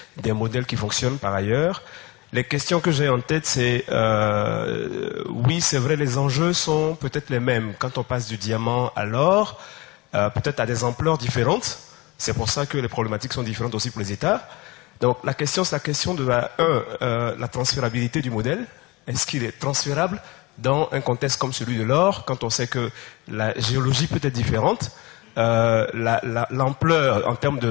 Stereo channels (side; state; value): right; quieter; 23.4 dB